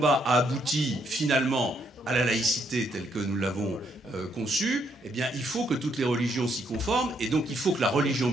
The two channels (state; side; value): normal; both; correlation 0.73